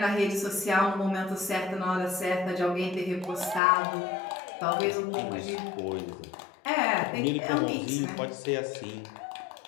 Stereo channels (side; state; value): right; drops out; at 3.6 s